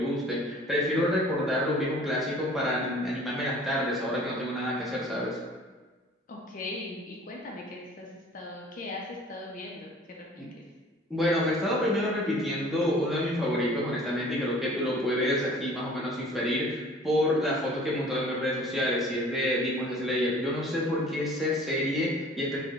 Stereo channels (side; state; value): both; normal; correlation 0.49